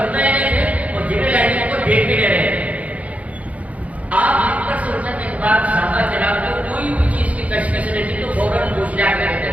رہے نہیں تھے اور جبریل امین کو دیکھ بھی نہیں رہے تھے. آپ ان پر سننے کے بعد صحابہ کرام کو کوئی بھی چیز کی تشخیص نہیں تھی تو فوراً پوچھ لیا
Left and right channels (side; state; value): left; late; 0.067 ms